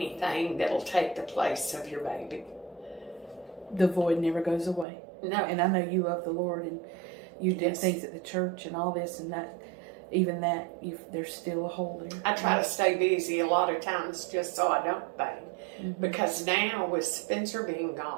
that'll take the place of your baby. The void never goes away. No. And I know you love the Lord, and you did things at the church and all this, and that, even that, there's still a hole there. I try to stay busy a lot of times just so I don't bang. Because now with Spencer being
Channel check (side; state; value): left; drops out; at 4.9 s